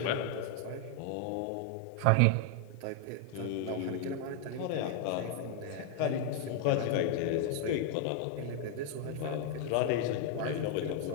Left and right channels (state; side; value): different; both; correlation 0.00